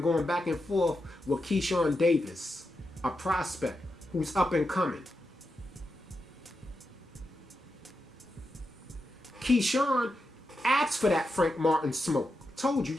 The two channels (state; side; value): normal; both; correlation 0.87